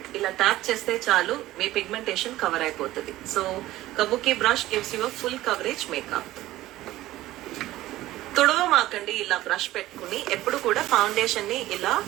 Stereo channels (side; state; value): left; quieter; 15.9 dB